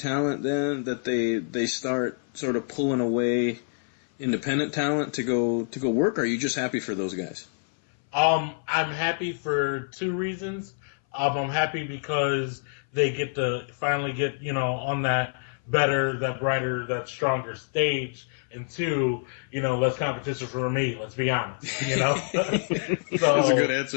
then, that they start sort of pulling away, independent talent to go work? Or are you just happy for those guys? I'm happy for two reasons. I'm happy because they get to finally get, on that better, that brighter, that stronger stage. And two, less competition for me, let's be honest, So, that's a good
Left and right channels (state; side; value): silent; right; 59 dB below the other